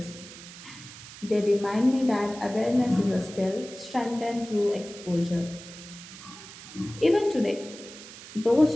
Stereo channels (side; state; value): right; noise; hiss, 15 dB below the sound